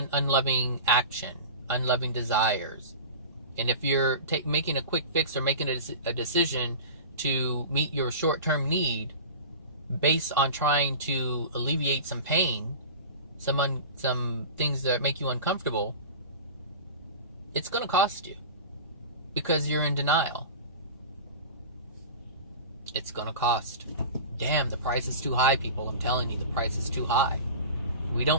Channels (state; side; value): inverted; both; correlation -0.33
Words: unloving action, unloving desires. And if you're making a quick fix or making a decision to meet your short-term need based on trying to alleviate some pain, some things that make you uncomfortable, it's going to cost you because you're in denial. It's going to cost. Damn, the price is too high, people. I'm telling you, the price is too high. We